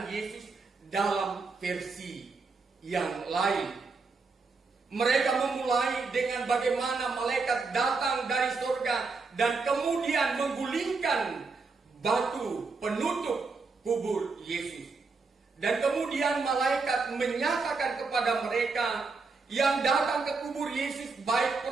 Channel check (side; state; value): left; quieter; 4.3 dB